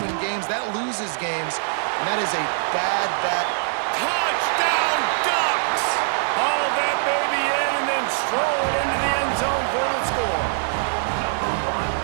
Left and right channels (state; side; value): silent; left; 64 dB below the other